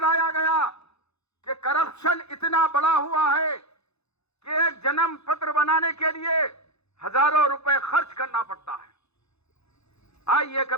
گیا کہ کرپشن اتنا بڑا ہوا ہے کہ ایک جنم پتر بنانے کے لیے ہزاروں روپے خرچ کرنا پڑتا ہے۔ آئیے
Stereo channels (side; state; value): right; late; 0.79 ms